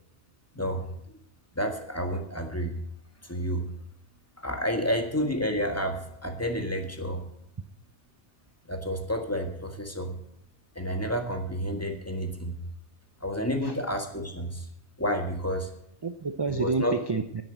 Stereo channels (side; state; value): both; normal; correlation -0.19